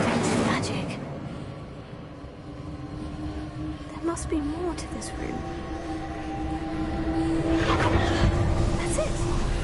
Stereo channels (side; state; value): both; identical; correlation 1.00